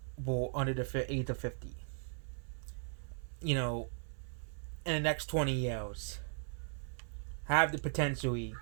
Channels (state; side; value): silent; left; 53 dB below the other